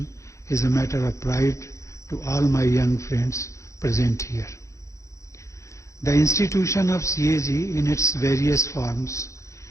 is a matter of pride to all my young friends present here. The institution of CAG in its various forms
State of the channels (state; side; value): late; right; 0.15 ms